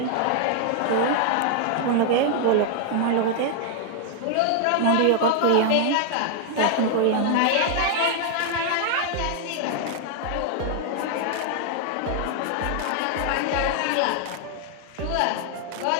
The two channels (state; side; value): different; both; correlation 0.00